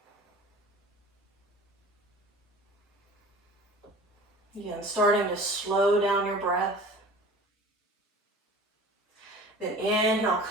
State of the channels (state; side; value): normal; both; correlation 0.42